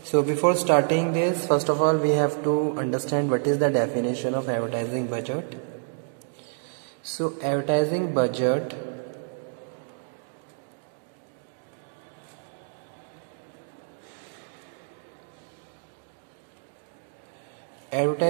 So before starting this, first of all we have to understand what is the definition of advertising budget. So advertising budget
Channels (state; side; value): silent; left; digital silence